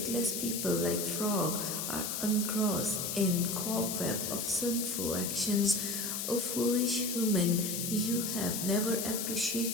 people like frog are engrossed in cobweb of sinful actions. O foolish human, you have never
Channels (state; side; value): noise; left; hiss, 2 dB below the sound